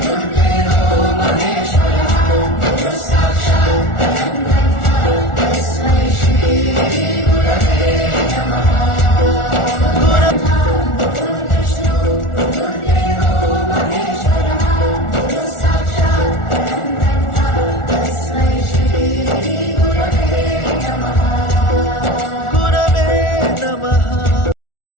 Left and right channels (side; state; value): right; late; 1.4 ms